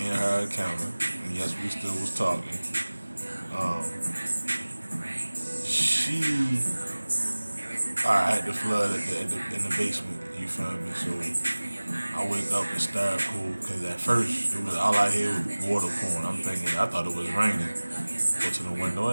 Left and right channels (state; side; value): inverted; both; correlation -1.00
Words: and her encounter, and yes, we still was talking. I had the flood in the basement. You feel me? So I wake up and start cool, because at first it was all I hear was water pouring. I thought it was raining. Go to the window,